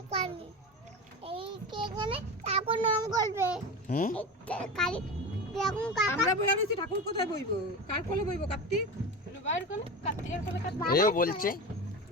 এই কে এখানে ঠাকুর নাম করবে হুম। কালি দেখুন কাকা আমরা বইয়া রয়েছি, ঠাকুর কোথায় বইবো? কার কোলে বইবো? কার্তিক রুবাইয়ের কোলে? কার্তিকের কোলে? এও বলছে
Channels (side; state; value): both; normal; correlation 0.26